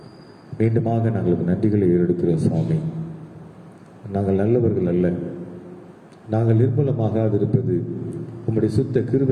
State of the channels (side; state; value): both; identical; correlation 1.00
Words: மீண்டுமாக நாங்கள் நன்றிகளை ஏறெடுக்கிறோம் சுவாமி. நாங்கள் நல்லவர்கள் அல்ல, நாங்கள் நிர்மூலமாகாதிருப்பது உம்முடைய சுத்த